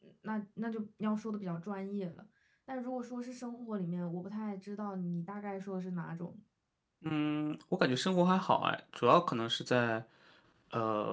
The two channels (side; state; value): both; identical; correlation 1.00